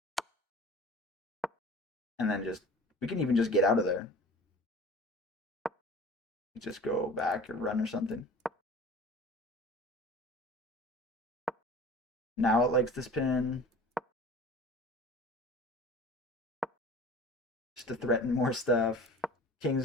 And then just, we can even just get out of there. just go back or run or something. Now it likes this pin. Just to threaten more stuff.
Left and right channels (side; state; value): both; normal; correlation 0.42